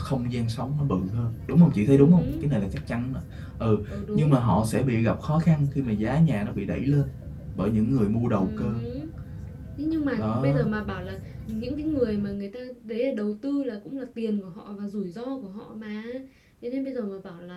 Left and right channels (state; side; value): identical; both; correlation 1.00